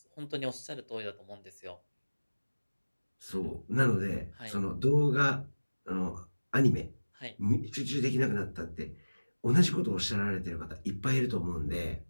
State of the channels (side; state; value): both; inverted; correlation -1.00